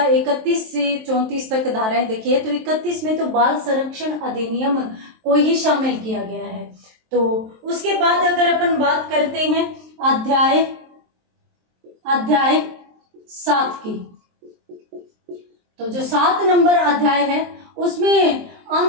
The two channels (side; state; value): left; late; 23 ms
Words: 31 से 34 तक धाराएं देखी है, तो 31 में तो बाल संरक्षण अधिनियम को ही शामिल किया गया है। तो उसके बाद अगर अपन बात करते हैं अध्याय 7 की, तो जो 7 नंबर अध्याय है उसमें